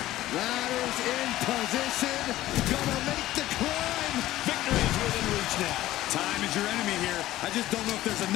Ladders in position. Gonna make the climb. Victory is within reach now. Time is your enemy here. I just don't know if there's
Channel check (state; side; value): quieter; right; 15.1 dB